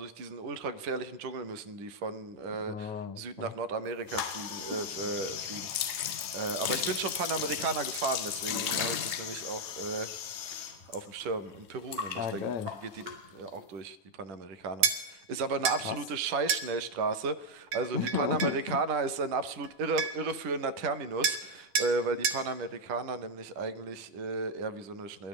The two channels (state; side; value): late; left; 10 ms